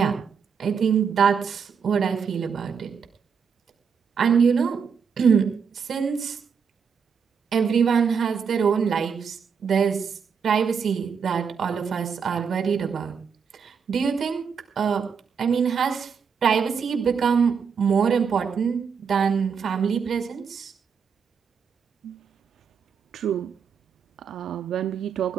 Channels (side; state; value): left; quieter; 6.4 dB